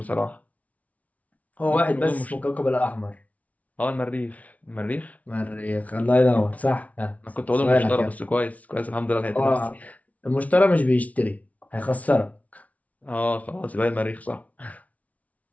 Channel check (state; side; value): late; right; 0.069 ms